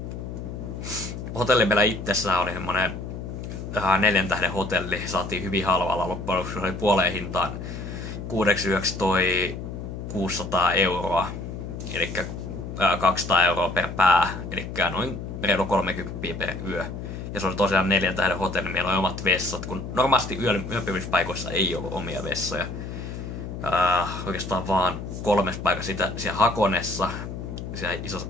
Hotelli meillä itsessään oli semmonen 4 tähden hotelli, saatiin hyvin halvalla loppujen lopuksi, se oli puoleen hintaan 6 yöksi toi 600 €, eli 200 € per pää, eli noin reilu 30 per yö. Ja se oli tosiaan 4 tähden hotelli, meillä oli omat vessat, kun normaalisti yöpymispaikoissa ei ollut omia vessoja. Oikeastaan vaan 3 paikassa siellä Hakonessa, siellä isossa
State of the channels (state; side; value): noise; left; hum, 8 dB below the sound